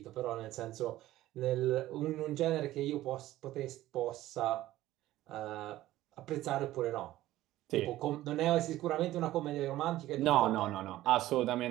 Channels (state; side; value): quieter; left; 15.3 dB